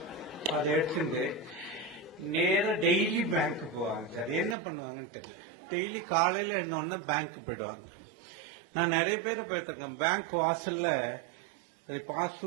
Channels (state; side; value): drops out; left; at 4.5 s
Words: அதை எடுத்துட்டு நேரம் டெய்லி பேங்க் போவாங்க. சார் என்ன பண்ணுவாங்க, டெய்லி காலையில இருந்தோம்னா பேங்க் போயிடுவாங்க. நான் நிறைய பேரை போயிருக்கேன். பேங்க் வாசல்ல